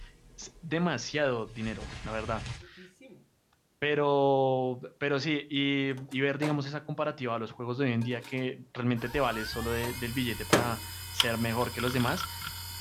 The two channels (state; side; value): identical; both; correlation 1.00